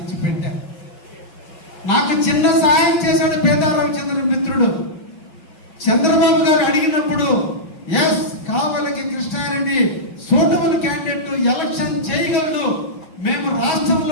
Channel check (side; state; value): right; late; 6.2 ms